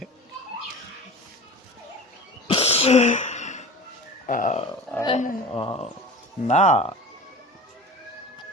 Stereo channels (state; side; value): normal; both; correlation 0.36